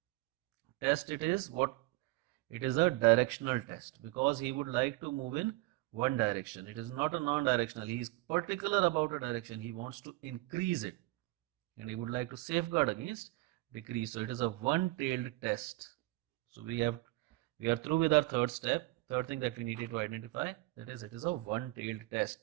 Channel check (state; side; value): quieter; left; 20.2 dB